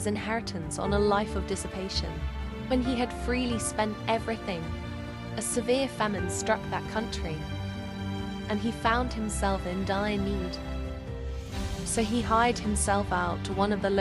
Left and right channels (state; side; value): identical; both; correlation 1.00